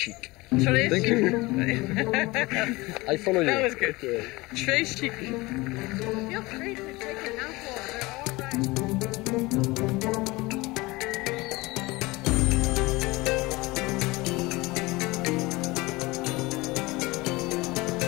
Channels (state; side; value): quieter; right; 22.1 dB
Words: Thank you. I follow you. That was good. Très chic. Feel free to take your mouthful. They're all right.